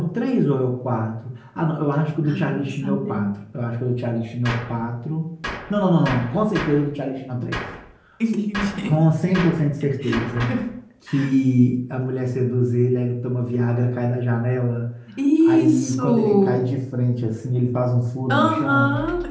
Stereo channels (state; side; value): identical; both; correlation 1.00